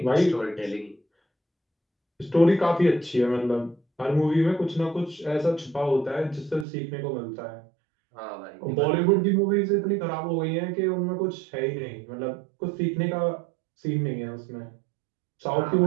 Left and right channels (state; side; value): drops out; left; at 6.7 s